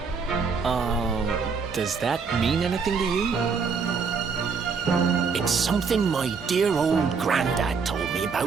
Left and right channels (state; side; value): quieter; left; 5.4 dB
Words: Does that mean anything to you? It's something my dear old granddad told me